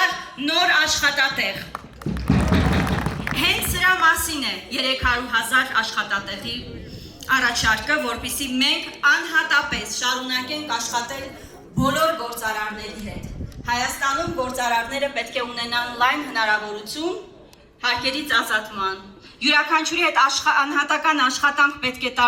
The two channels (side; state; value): both; identical; correlation 1.00